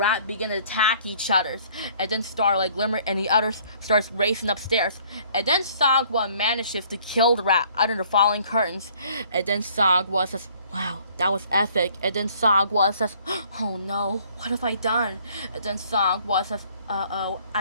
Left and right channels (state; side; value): inverted; both; correlation -0.58